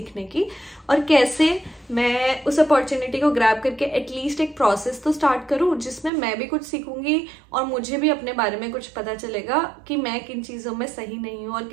की, और कैसे मैं उस अपॉर्चुनिटी को ग्रैब करके एटलीस्ट एक प्रोसेस तो स्टार्ट करूँ जिसमें मैं भी कुछ सीखूंगी और मुझे भी अपने बारे में कुछ पता चलेगा कि मैं किन चीजों में सही नहीं हूँ और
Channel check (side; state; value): left; drops out; at 6.1 s